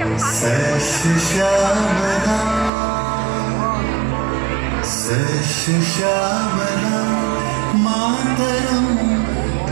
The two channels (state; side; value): drops out; left; at 2.7 s